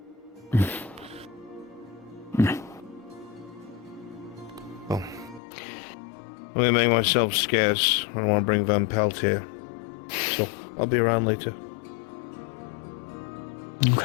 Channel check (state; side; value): drops out; right; at 5.4 s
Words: Let me make myself scarce. I don't want to bring Van Pelt here. So, I'll be around later.